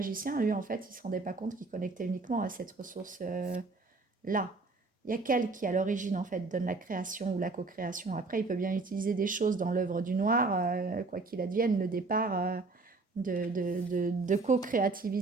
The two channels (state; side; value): quieter; left; 3.7 dB